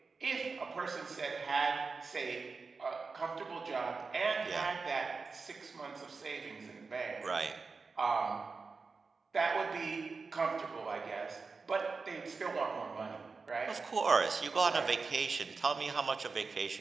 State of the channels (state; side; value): quieter; left; 4.5 dB